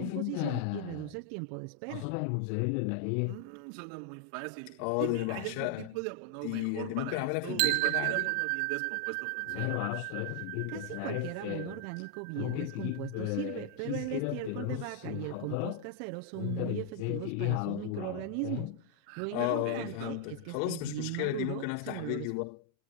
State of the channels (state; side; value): different; both; correlation 0.00